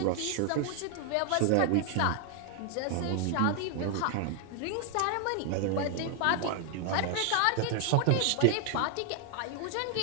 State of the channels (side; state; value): both; different; correlation 0.00